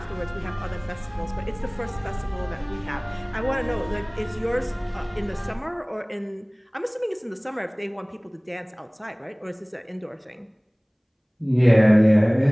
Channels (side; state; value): both; identical; correlation 1.00